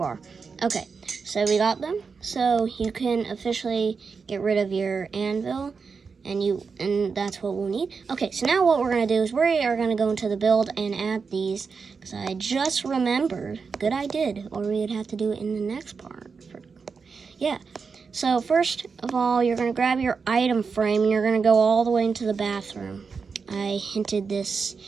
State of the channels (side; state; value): left; quieter; 5.2 dB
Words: Okay, so we got them. So you can officially get rid of your anvil, and that's what we'll need. Okay, so now what we're gonna do is we are gonna go into the build and add these, because I just remembered. Good I did, or we'd have to do it in the next part. Yeah, so first of all, you're gonna grab your item frame and you're gonna go all the way into the bathroom. I hinted this